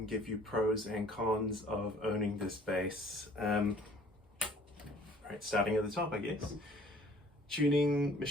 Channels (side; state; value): both; normal; correlation 0.54